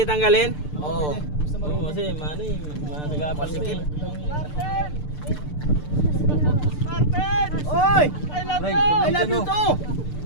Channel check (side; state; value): right; late; 6.7 ms